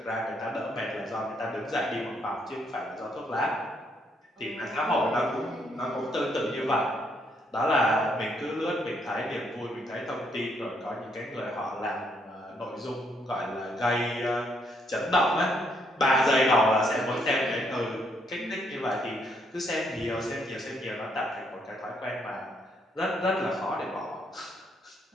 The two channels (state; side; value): normal; both; correlation 0.72